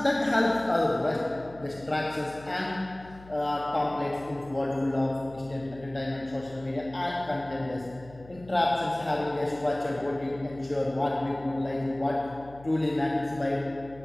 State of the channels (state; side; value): noise; left; hum, 20 dB below the sound